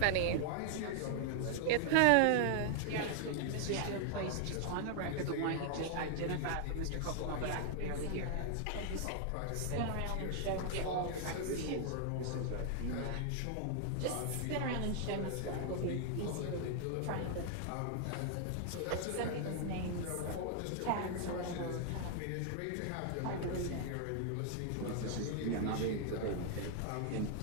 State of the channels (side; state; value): both; different; correlation 0.00